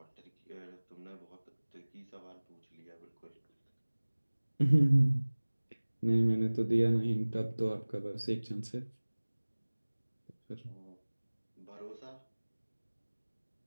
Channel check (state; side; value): inverted; both; correlation -1.00